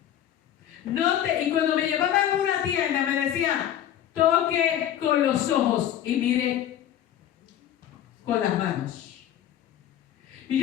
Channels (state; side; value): quieter; right; 11.0 dB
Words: Y cuando me llevaban a una tienda me decían, toque con los ojos y mire con las manos.